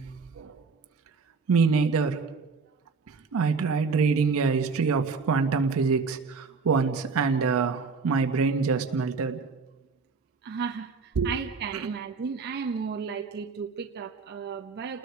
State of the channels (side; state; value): left; quieter; 4.8 dB